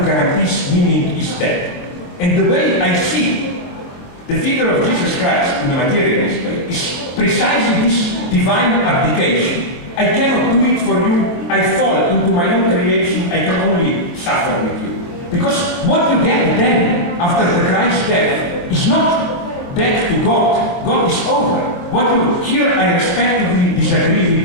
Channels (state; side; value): late; right; 23 ms